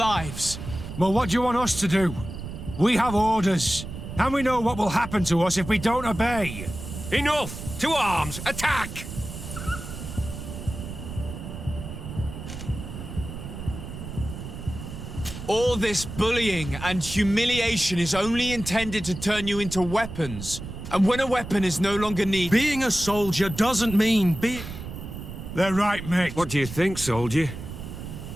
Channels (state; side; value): noise; right; rumble, 10 dB below the sound